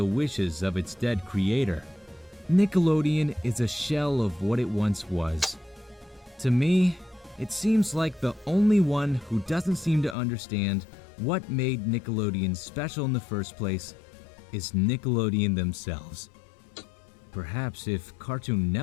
wishes of its dead creator. Nickelodeon is a shell of what it once was. To me, it seems like the only one who doesn't seem to understand what made Nickelodeon special in the first place is Nickelodeon themselves. Perhaps if Cartoon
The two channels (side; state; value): right; drops out; at 10.2 s